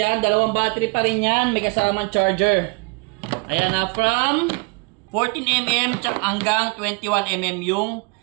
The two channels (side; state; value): left; quieter; 31.2 dB